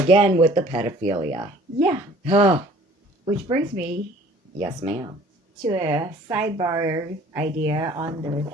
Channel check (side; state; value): both; normal; correlation 0.52